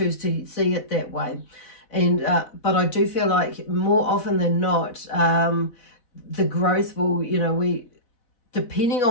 to see it that way. And but I do feel like more often than not, the growth will, you know, we, depending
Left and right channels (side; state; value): right; late; 4.0 ms